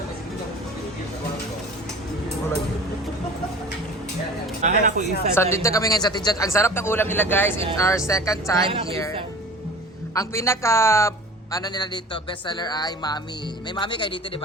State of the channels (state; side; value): normal; both; correlation 0.40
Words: Wala yun. Akin ako isa. So, dito kami ngayon sa Tijat. Ang sarap ng ulam nila, guys. It's our second time here. Ang pinaka, ano nila dito, bestseller ay Mami. May Mami kayo dito, di